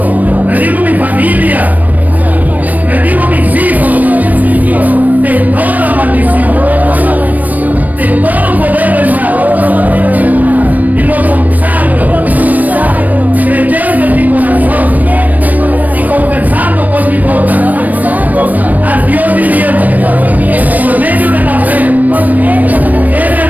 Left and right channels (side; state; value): left; late; 0.079 ms